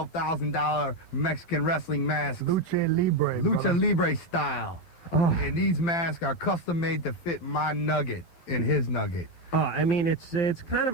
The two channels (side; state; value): right; late; 12 ms